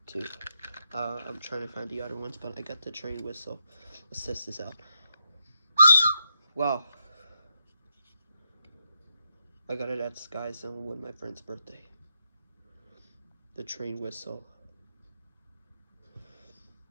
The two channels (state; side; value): inverted; both; correlation -0.81